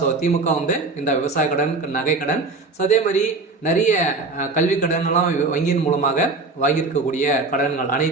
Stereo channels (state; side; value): quieter; left; 3.7 dB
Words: திமுக வந்து இந்த விவசாய கடன், நகை கடன், அதே மாதிரி நிறைய கல்வி கடன் எல்லாம் வங்கியின் மூலமாக வாங்கியிருக்கக்கூடிய கடன்கள்